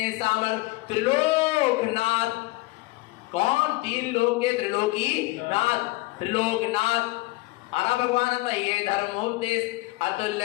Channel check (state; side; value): quieter; right; 21.7 dB